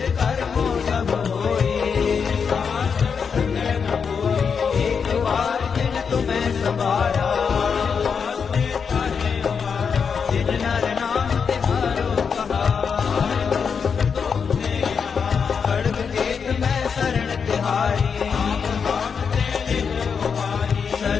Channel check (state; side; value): quieter; right; 6.2 dB